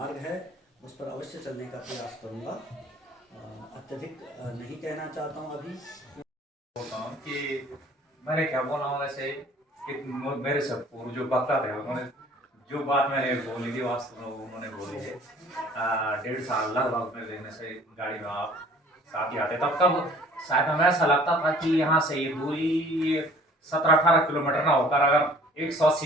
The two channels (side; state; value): both; normal; correlation 0.52